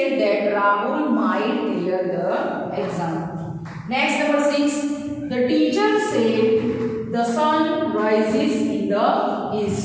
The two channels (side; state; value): both; identical; correlation 1.00